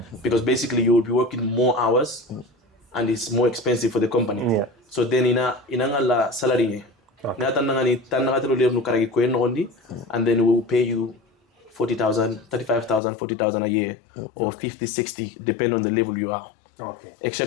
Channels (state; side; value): drops out; right; at 13.0 s